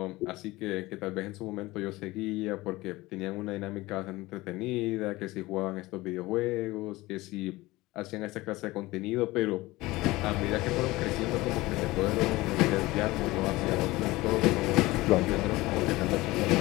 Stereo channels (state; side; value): quieter; right; 19.8 dB